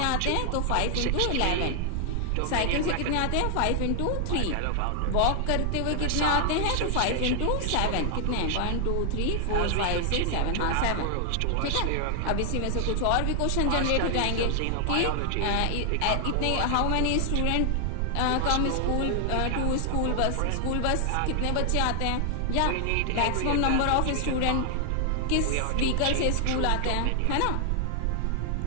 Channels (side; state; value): both; different; correlation 0.00